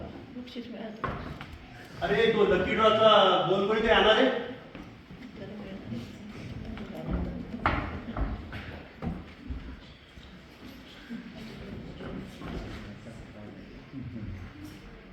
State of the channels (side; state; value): both; identical; correlation 1.00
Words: अरे तो लकी ड्रॉचा 2 कोणी ते येणार आहे.